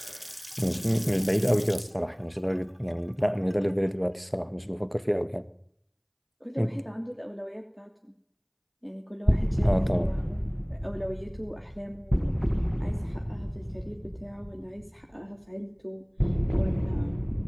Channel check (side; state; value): both; identical; correlation 1.00